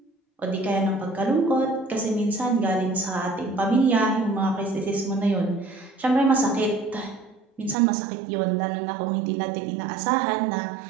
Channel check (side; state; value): left; drops out; at 7.8 s